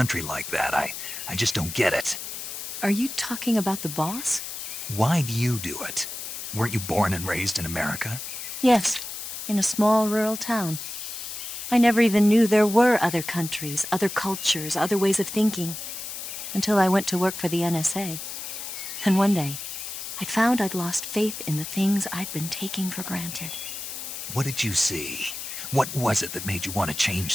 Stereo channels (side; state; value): left; noise; hiss, 7 dB below the sound